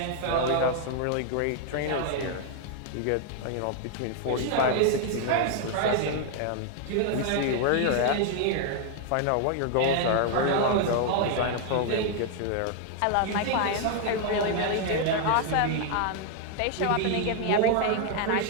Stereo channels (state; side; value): different; both; correlation 0.00